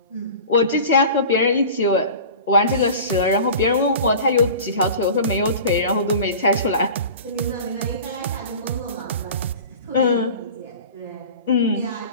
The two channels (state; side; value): inverted; both; correlation -0.38